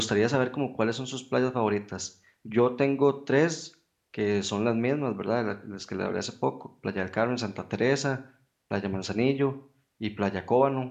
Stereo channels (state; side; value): identical; both; correlation 1.00